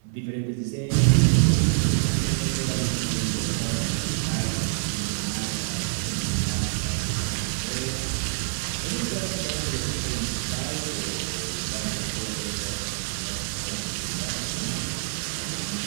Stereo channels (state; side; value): silent; left; 61 dB below the other